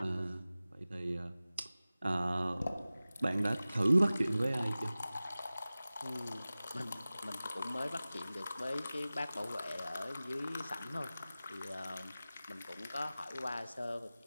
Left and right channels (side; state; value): both; inverted; correlation -0.97